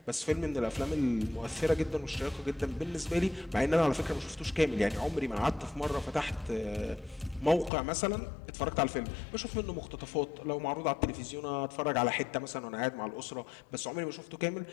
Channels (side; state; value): right; drops out; at 7.7 s